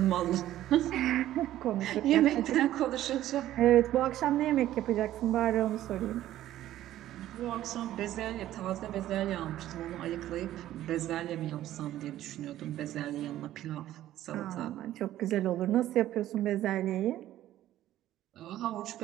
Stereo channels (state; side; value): quieter; left; 13.4 dB